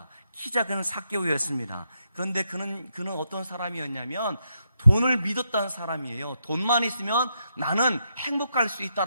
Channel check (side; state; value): both; inverted; correlation -0.81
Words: 키 작은 삭개오였습니다. 그런데 그는 어떤 사람이었냐면 돈을 믿었다는 사람이에요. 돈만 있으면 나는 행복할 수